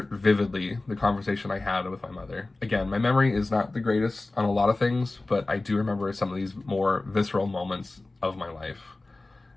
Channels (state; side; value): quieter; right; 3.1 dB